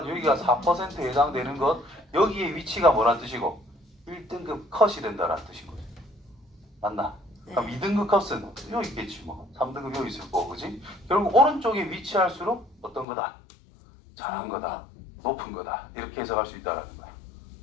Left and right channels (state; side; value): drops out; right; at 13.1 s